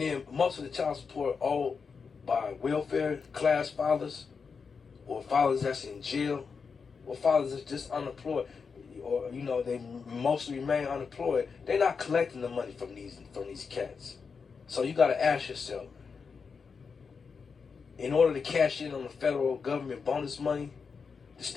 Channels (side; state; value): right; quieter; 5.5 dB